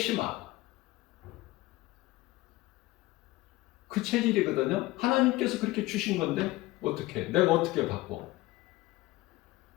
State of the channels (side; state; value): right; quieter; 18.9 dB